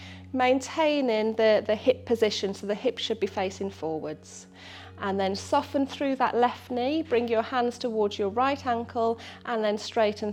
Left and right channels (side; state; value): both; identical; correlation 1.00